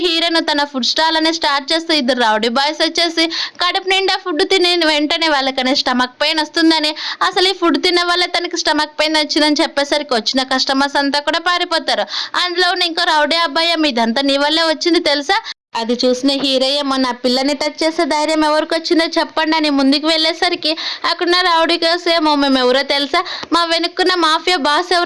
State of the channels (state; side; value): identical; both; correlation 1.00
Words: హీరోయిన్ తన ఫుడ్ స్టాల్ అనేది స్టార్ట్ చేస్తే ఇద్దరు రౌడీ బాయ్స్ వచ్చేసి కడుపు నిండా ఫుడ్ తిని వెంటనే వాళ్ళకనే స్టమక్ పెయిన్ వస్తుందని, అసలు ఈ ఫుడ్ తిన్న వల్ల తనకి స్టమక్ పెయిన్ వచ్చిందని చెప్పేసరికి వచ్చిన కస్టమర్స్ అంతా కూడా పారిపోతారు. అందులో ఇంకో రౌడీ అబ్బాయి ఇదంతా నీ వల్లే వచ్చింది తెలుసా, అది చూసిన హీరోయ్య నా పిల్లని టచ్ చేసే ధైర్యం ఎవరికి వచ్చిందో చెప్పండి అని ముందుకు వెళ్ళేసరికి అక్కడున్న రౌడీ గర్ల్స్ ఏమో మేము ఎవరో తెలుసా, మా వెనుక్కున్న మాఫియా బాస్